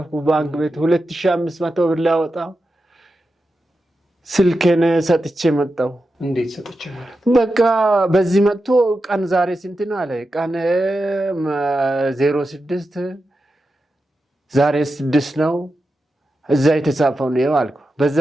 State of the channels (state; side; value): normal; both; correlation 0.90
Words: ባንክ ቤት 2500 ብር ላወጣ ስልኬን ሰጥቼ መጣሁ። እንዴት ሰጥቼ ማለት? በቃ በዚህ መጥቶ ቀን ዛሬ ስንት ነው አለ። ቀን 06 ዛሬ 6 ነው እዛ የተጻፈው ነው አልኩ። በዛ